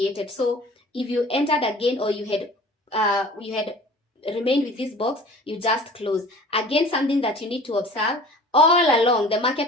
So if you entered again, or you had remained with this box, you just close. Again, something that you need to observe, all along the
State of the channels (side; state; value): both; normal; correlation 0.44